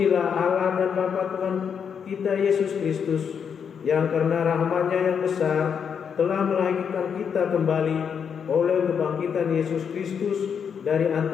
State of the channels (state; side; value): quieter; right; 7.1 dB